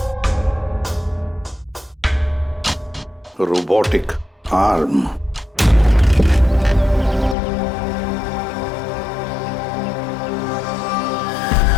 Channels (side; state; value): right; drops out; at 7.4 s